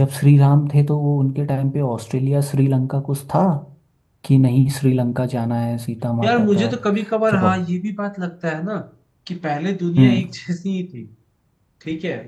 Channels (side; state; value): both; identical; correlation 1.00